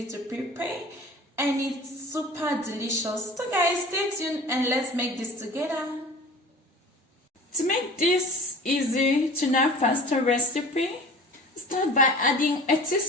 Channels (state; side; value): normal; both; correlation 0.42